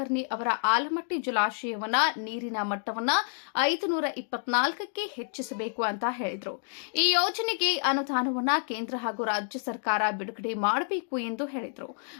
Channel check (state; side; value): silent; right; digital silence